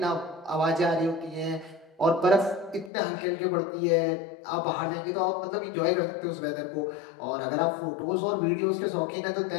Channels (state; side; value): drops out; right; at 2.9 s